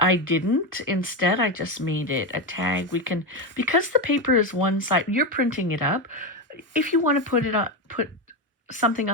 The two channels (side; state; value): both; normal; correlation 0.13